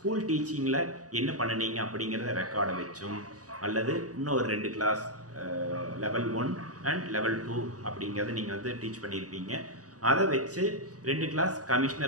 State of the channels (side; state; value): left; late; 0.67 ms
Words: டீச்சிங்கில் என்ன பண்ணினீங்க அப்படிங்கிறத ரெக்கார்டை வச்சும், அல்லது இன்னும் ஒரு 2 கிளாஸ் லெவல் 1 அண்ட் லெவல் 2 அப்படிங்கிறத நீங்கள் டீச் பண்ணியிருப்பீங்க. அதை வச்சு 2 கிளாஸ்